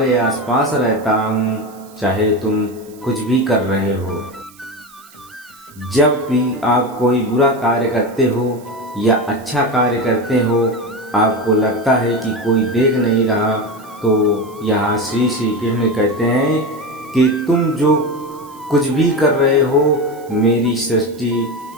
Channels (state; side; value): noise; right; hiss, 25 dB below the sound